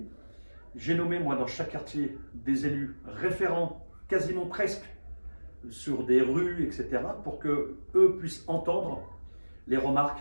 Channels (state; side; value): inverted; both; correlation -1.00